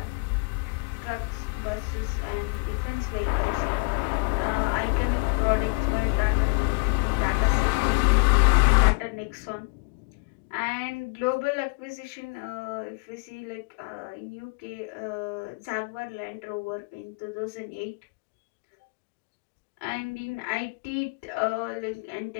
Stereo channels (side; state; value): right; quieter; 32.0 dB